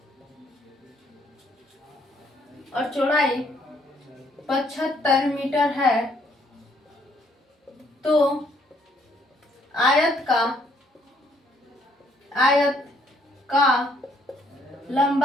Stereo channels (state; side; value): normal; both; correlation 0.67